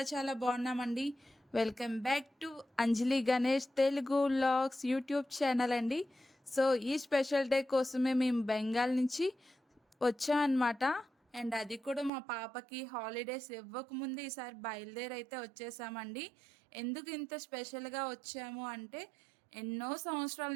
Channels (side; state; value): left; drops out; at 12.1 s